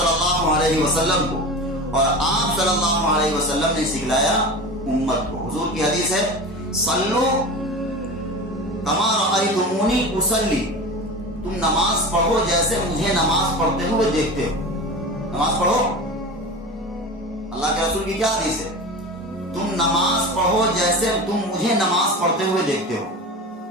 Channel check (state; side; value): normal; both; correlation 0.30